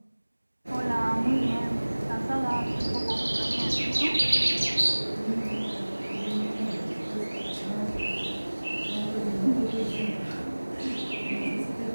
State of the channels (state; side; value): inverted; both; correlation -1.00